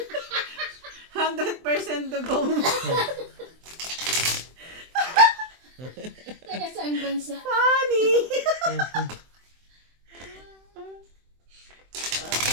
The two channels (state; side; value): late; left; 23 ms